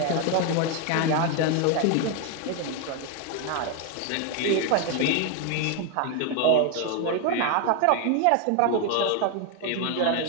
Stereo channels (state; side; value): different; both; correlation 0.01